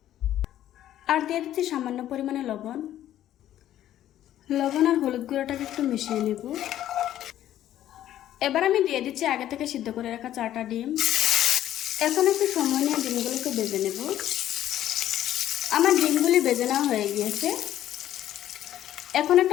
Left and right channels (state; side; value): quieter; right; 12.3 dB